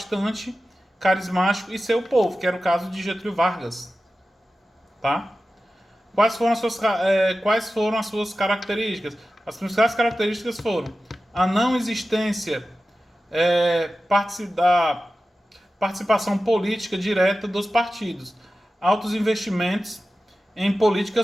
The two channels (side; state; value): both; normal; correlation 0.94